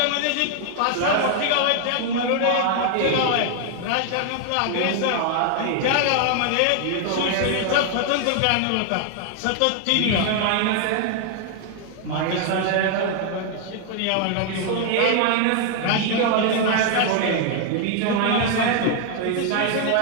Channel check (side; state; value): both; different; correlation 0.00